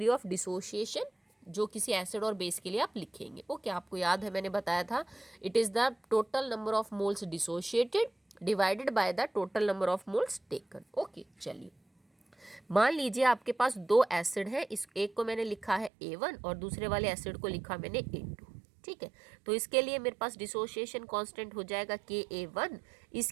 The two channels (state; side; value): drops out; left; at 15.9 s